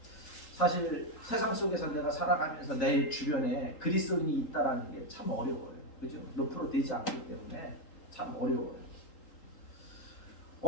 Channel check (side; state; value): right; late; 3.8 ms